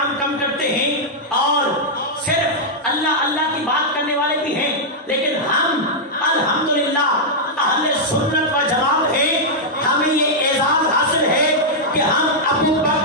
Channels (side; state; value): both; normal; correlation -0.05